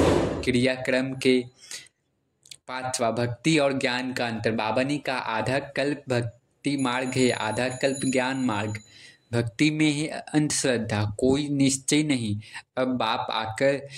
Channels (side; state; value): both; identical; correlation 1.00